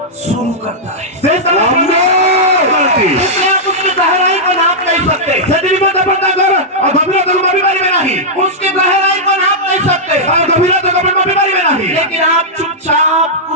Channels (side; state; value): both; normal; correlation -0.09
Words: शुरू करता है। ସେ ସ୍ଥାନରେ କରନ୍ତି इसलिए आप उसकी गहराई को नाप नहीं सकते, ସେଥି ନିମନ୍ତେ ଆପଣ ତାଙ୍କର ଗଭୀରତାକୁ ମାପି ପାରିବେ ନାହିଁ उसकी गहराई को नाप नहीं सकते, ତାର ଗଭୀରତାକୁ ଆପଣ ମାପି ପାରିବେ ନାହିଁ लेकिन आप चुपचाप